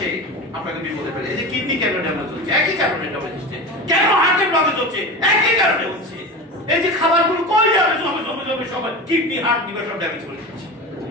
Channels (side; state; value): both; normal; correlation 0.27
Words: আপনাকে বিপদে ফেলে। এই যে কিডনি কেন ড্যামেজ হচ্ছে, একই কারণে ড্যামেজ হচ্ছে। কেন হার্টের ব্লকেজ হচ্ছে, একই কারণে হচ্ছে। এই যে খাবারগুলো কই যাবে জমে জমে জমে সবাই কিডনি, হার্ট, লিভার সব ড্যামেজ করে দিচ্ছে।